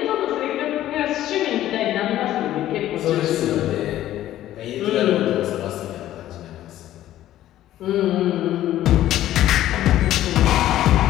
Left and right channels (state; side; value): quieter; right; 13.3 dB